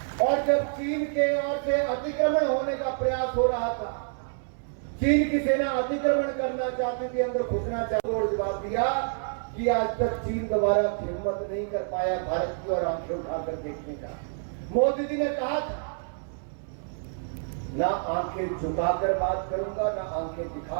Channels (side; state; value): left; silent; 59 dB below the other